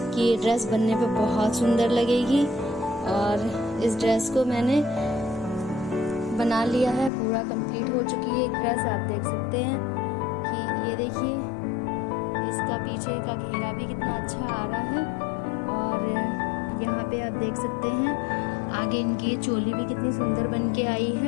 ये ड्रेस बनने पे बहुत सुंदर लगेगी। और इस ड्रेस को मैंने बना लिया है, पूरा कंप्लीट हो चुकी है ड्रेस। आप देख सकते हैं कि ये देखिए इसका पीछे का घेरा भी कितना अच्छा आ रहा है। और यहाँ पे आप देख सकते हैं आगे इनकी ये चोली भी कितनी सुंदर बन के आई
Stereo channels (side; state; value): right; drops out; at 7.1 s